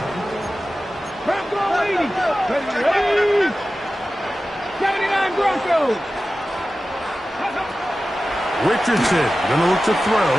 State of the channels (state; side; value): normal; both; correlation 0.95